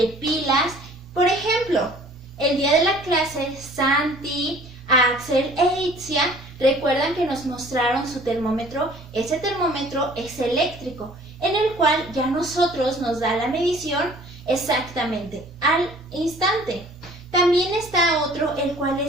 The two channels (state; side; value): normal; both; correlation 0.52